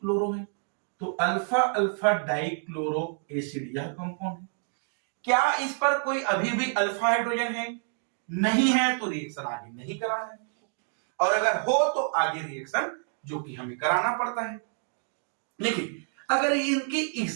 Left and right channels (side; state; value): left; silent; 59 dB below the other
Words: है, तो अल्फा अल्फा डाइक्लोरो एसिड यह कंपाउंड है। क्या इस पर कोई अभी भी अल्फा हाइड्रोजन है? नहीं है, तो रिएक्शन आगे नहीं कराना है। और अगर हो तो आगे रिएक्शन जो कि हमें कराना पड़ता है। देखिए अगर इनकी